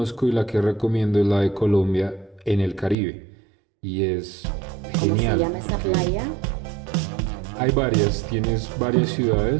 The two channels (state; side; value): drops out; left; at 3.0 s